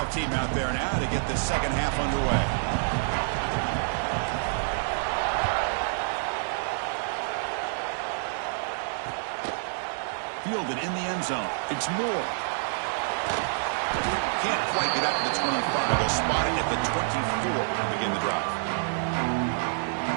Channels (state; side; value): silent; left; digital silence